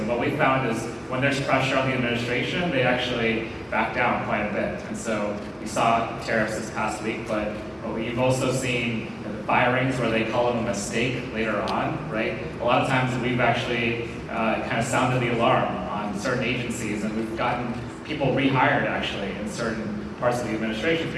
what we found is when there's pressure on the administration, they actually back down quite a bit. And so we saw tariffs this past week, but we've also seen firings where they call them a mistake later on, right? A lot of times we've actually kind of sounded the alarm on certain agencies, and we've gotten people rehired actually in certain parts of the administration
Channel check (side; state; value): both; identical; correlation 1.00